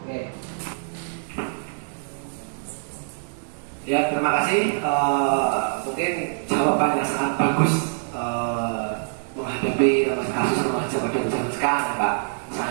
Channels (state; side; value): silent; left; digital silence